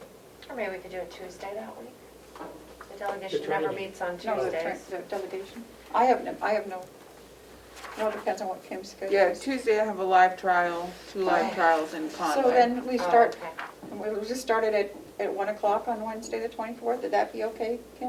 Or maybe we could do it Tuesday that week. The delegation never training. meets on no, Tuesdays. the delegation. I have no, it depends on what Kim's schedule yeah, is. Tuesday I have a live trial, 2 live trials in Conway. So then we Oh, start, okay. we'll just start it at 1 o'clock on Wednesday, the 24th. Would that be okay,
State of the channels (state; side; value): identical; both; correlation 1.00